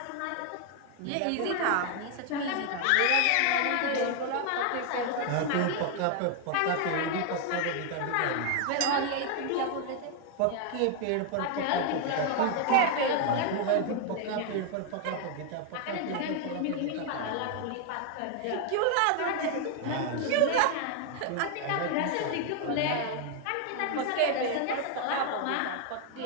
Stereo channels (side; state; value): both; different; correlation 0.00